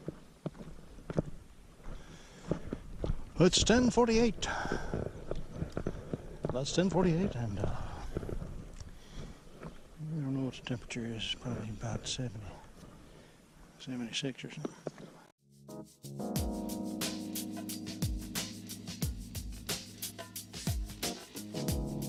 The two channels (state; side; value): identical; both; correlation 1.00